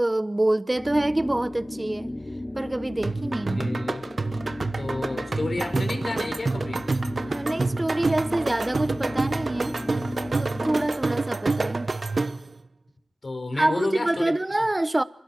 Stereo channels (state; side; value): normal; both; correlation 0.98